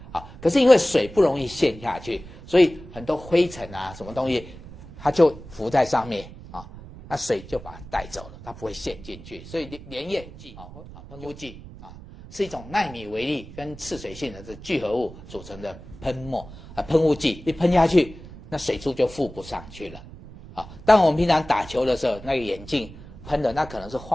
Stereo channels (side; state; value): right; noise; rumble, 16 dB below the sound